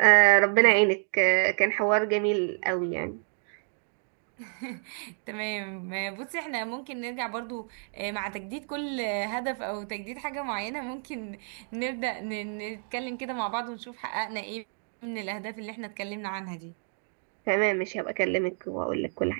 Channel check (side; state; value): left; silent; 57 dB below the other